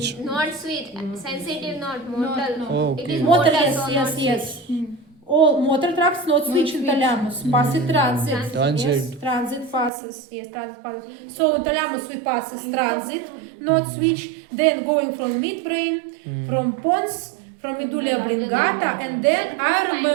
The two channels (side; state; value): left; drops out; at 9.9 s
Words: Not sweet, sensitive, not motor. Oh, It okay. is Motor, motor, yes, so yes, not yes. sweet. All motor tracts not switch in thalamus. Passes transit. Transit. Yes, transit passes. Yes, transit passes. So in thalamus we passes transit, not switch. Then going from midbrain, from pons, from medulla oblongata, and then I